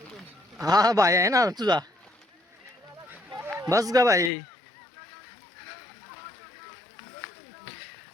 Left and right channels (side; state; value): right; drops out; at 4.3 s